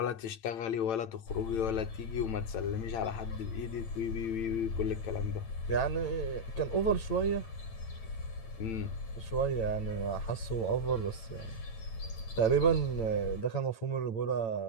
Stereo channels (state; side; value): late; right; 8.9 ms